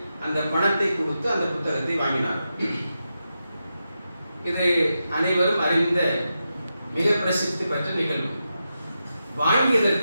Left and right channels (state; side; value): inverted; both; correlation -0.88